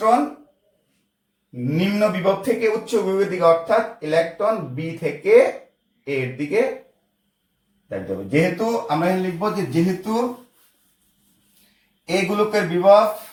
নিম্ন বিভব থেকে উচ্চ বিভবের দিকে, অর্থাৎ ইলেকট্রন বি থেকে এর দিকে যাইতে হবে। যেহেতু আমরা লিখবো যে যেহেতু এই গোলকের বিভব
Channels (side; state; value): both; identical; correlation 1.00